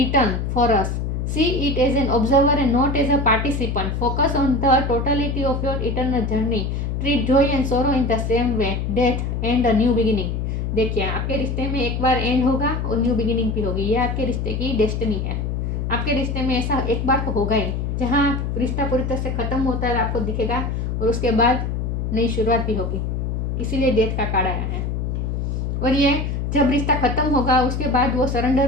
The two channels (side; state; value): left; noise; hum, 2 dB below the sound